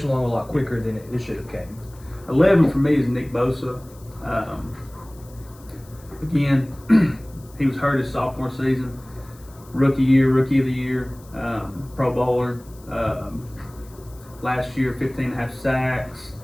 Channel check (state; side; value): noise; left; hiss, 25 dB below the sound